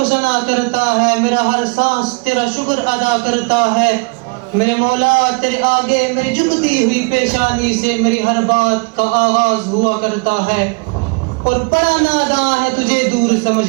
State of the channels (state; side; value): quieter; left; 31.1 dB